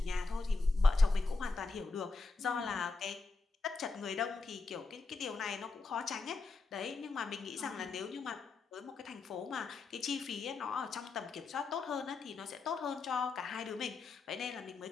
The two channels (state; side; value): quieter; right; 3.9 dB